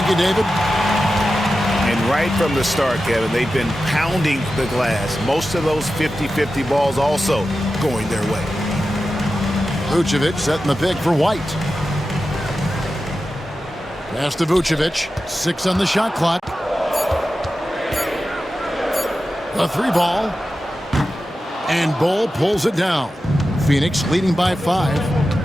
you, David. And right from the start, Kevin, they've been pounding the glass. Most of those 50-50 balls also going their way. Vucevic setting the pick for White. Pass to Vucevic. 6 on the shot clock. A 3 ball. And Bull pulls it down. Phoenix leading by 5.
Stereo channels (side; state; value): both; normal; correlation 0.92